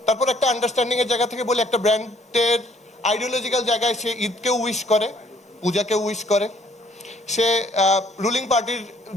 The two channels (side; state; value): both; normal; correlation 0.63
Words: তারপর একটা আন্ডারস্ট্যান্ডিংয়ের জায়গা থেকে বলি, একটা ব্র্যান্ডের আইডিওলজিক্যাল জায়গায় সে ঈদকেও উইশ করে, পূজাকেও উইশ করে, সে রুলিং পার্টির